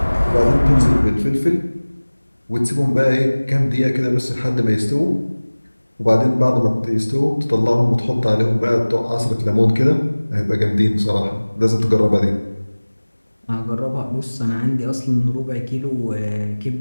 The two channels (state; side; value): inverted; both; correlation -1.00